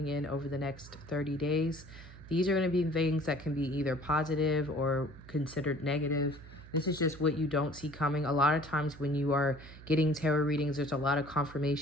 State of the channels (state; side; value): noise; right; hum, 17 dB below the sound